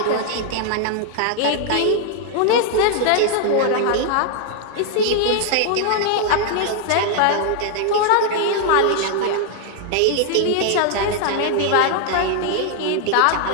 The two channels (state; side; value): different; both; correlation 0.00